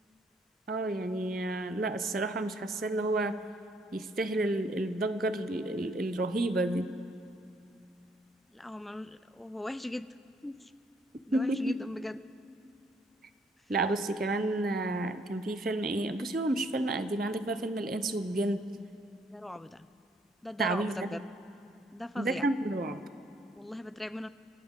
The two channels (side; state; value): both; normal; correlation 0.67